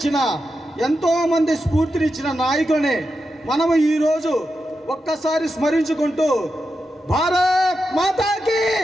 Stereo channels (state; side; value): normal; both; correlation 0.88